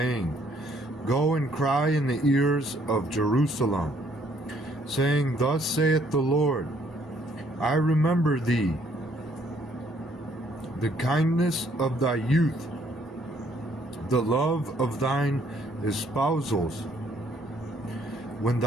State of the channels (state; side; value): normal; both; correlation 0.65